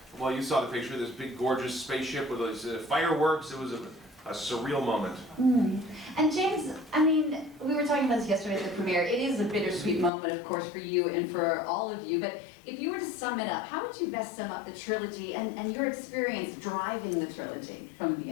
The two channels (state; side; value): drops out; right; at 10.1 s